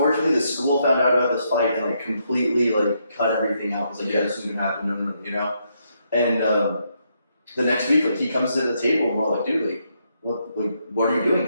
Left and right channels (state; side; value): inverted; both; correlation -0.78